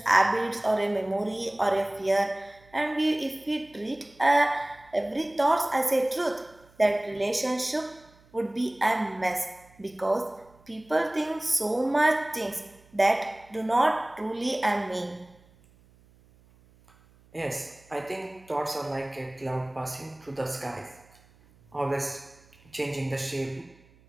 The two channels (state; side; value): noise; right; hum, 29 dB below the sound